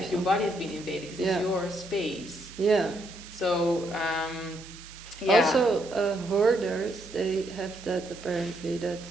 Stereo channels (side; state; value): right; noise; hiss, 17 dB below the sound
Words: Your body has been invaded because it's your space. Yeah. So. Also, hoarders, they have that apparently, that